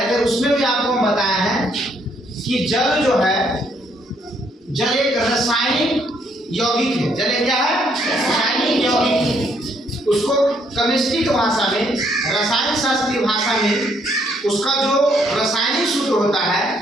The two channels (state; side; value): normal; both; correlation 0.70